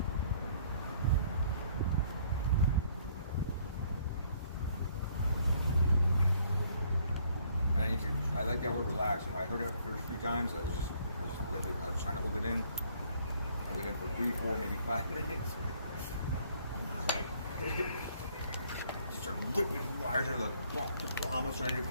And I like that word relax. When I heard it the first few times, I was trying to hold it in. Hold it in for 3, 4, maybe 5 minutes. Just started whipping the wires out of the bomb. I was trying to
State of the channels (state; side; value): inverted; both; correlation -0.62